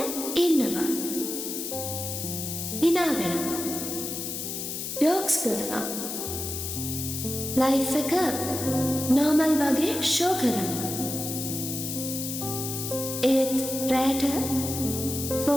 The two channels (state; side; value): noise; left; hiss, 5 dB below the sound